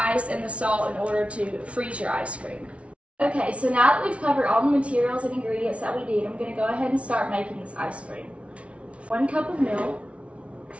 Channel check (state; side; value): late; left; 0.062 ms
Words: and the salt in order to freeze your ice cream. Okay, so now that we've covered all the materials and ingredients that we need, I'm going to go ahead and start making this ice cream. 1 cup of milk,